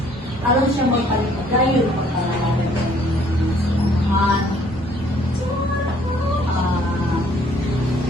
Alam siya magpalimagayon ng pagkalalaman ng samahan.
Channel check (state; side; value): normal; both; correlation 0.61